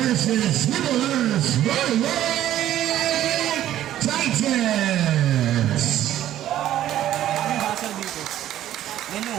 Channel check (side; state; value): left; quieter; 12.5 dB